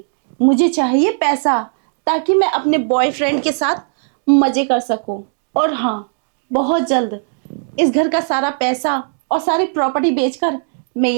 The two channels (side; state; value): left; silent; digital silence